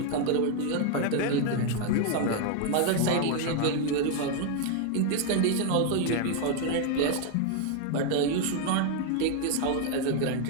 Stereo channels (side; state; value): both; different; correlation 0.01